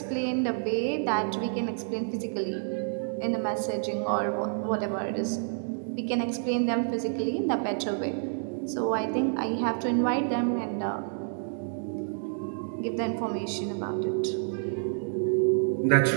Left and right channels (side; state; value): left; silent; digital silence